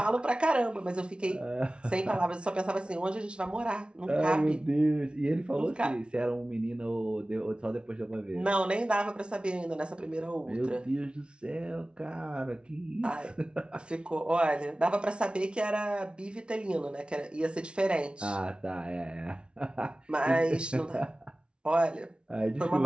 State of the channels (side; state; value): left; late; 0.057 ms